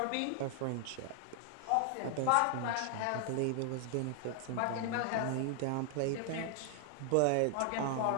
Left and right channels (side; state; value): both; different; correlation 0.00